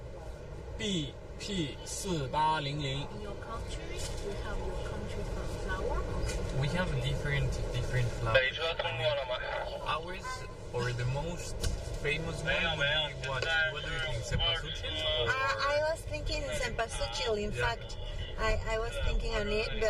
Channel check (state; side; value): identical; both; correlation 1.00